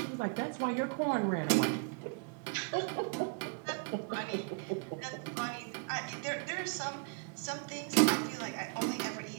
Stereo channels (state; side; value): quieter; left; 38.2 dB